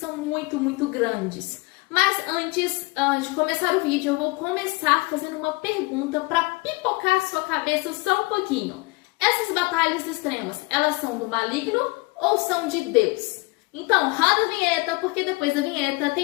muito grandes. Mas antes de começar o vídeo, eu vou começar fazendo uma pergunta pra pipocar a sua cabeça só um pouquinho. Essas batalhas extremas, elas são do maligno ou são de Deus? Então, roda a vinheta, porque depois da vinheta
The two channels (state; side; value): quieter; right; 25.3 dB